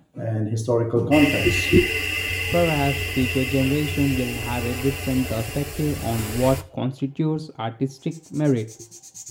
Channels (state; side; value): identical; both; correlation 1.00